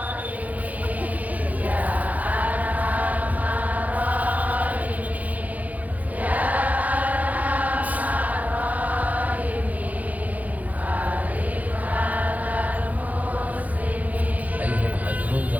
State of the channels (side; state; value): left; late; 0.077 ms